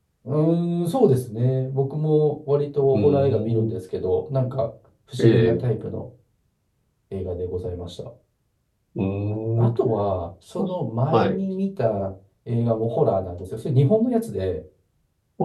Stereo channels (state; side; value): identical; both; correlation 1.00